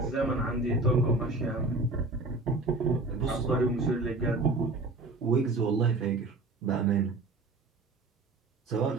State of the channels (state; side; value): quieter; left; 3.2 dB